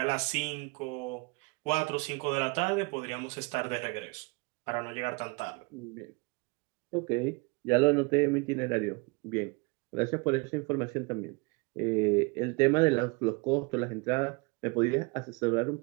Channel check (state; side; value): quieter; left; 28.6 dB